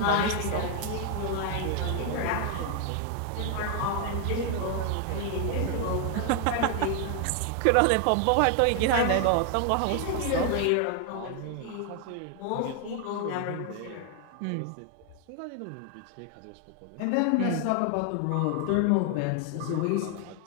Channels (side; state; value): both; different; correlation 0.01